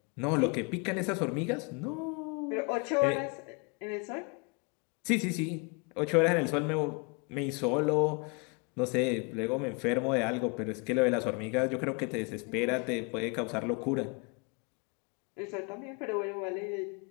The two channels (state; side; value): quieter; right; 32.9 dB